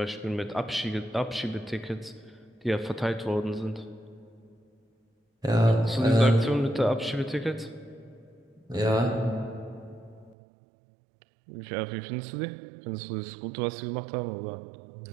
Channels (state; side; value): drops out; left; at 10.4 s